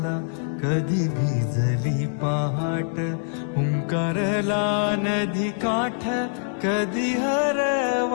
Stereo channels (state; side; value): silent; right; digital silence